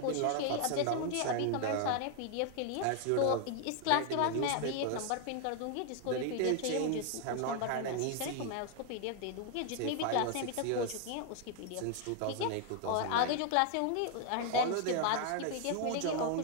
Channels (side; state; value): both; different; correlation 0.00